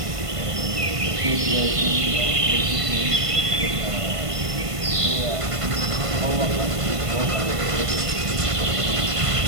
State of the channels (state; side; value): late; left; 1.5 ms